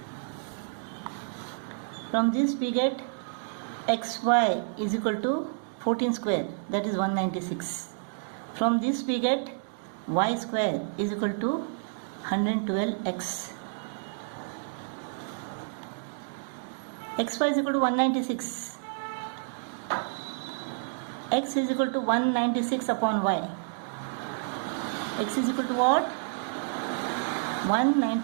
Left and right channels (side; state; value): left; silent; digital silence